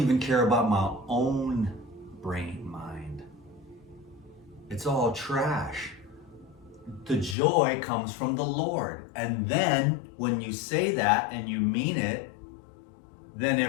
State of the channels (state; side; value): drops out; right; at 7.4 s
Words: care about my own brain mind. It's all trash. The joy comes from the Lord. And then when you say that and you mean it, then